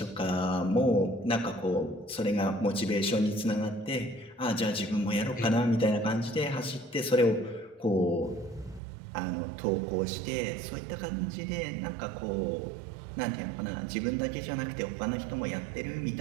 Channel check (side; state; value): left; drops out; at 8.8 s